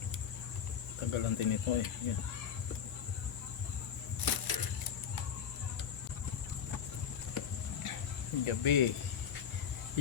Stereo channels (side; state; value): right; quieter; 7.9 dB